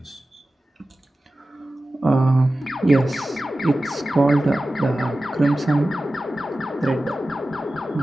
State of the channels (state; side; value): normal; both; correlation 0.95